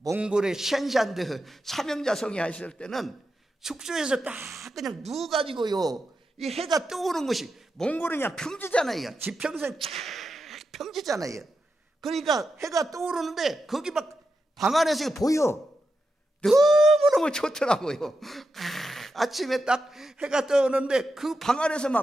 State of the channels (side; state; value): both; normal; correlation 0.88